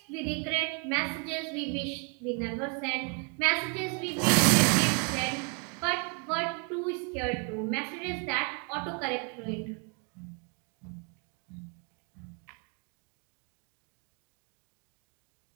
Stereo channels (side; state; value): left; quieter; 35.9 dB